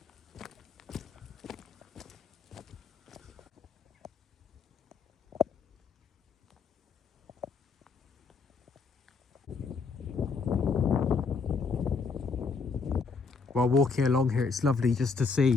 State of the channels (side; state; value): right; quieter; 4.8 dB